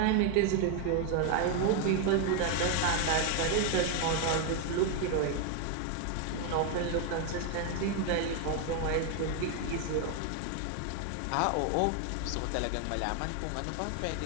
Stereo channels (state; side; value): different; both; correlation 0.01